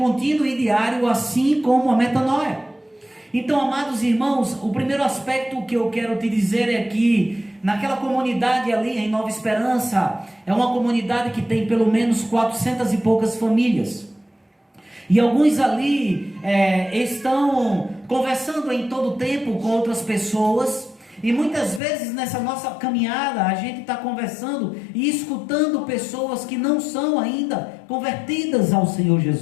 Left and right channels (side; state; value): right; drops out; at 21.8 s